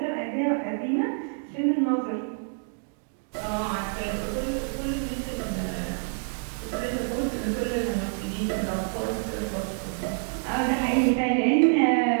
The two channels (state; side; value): silent; left; 58 dB below the other